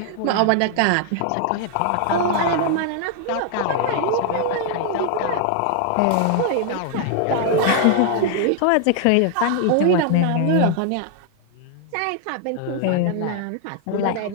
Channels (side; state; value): both; different; correlation 0.00